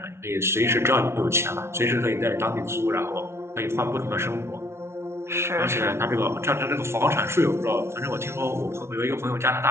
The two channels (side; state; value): left; late; 0.13 ms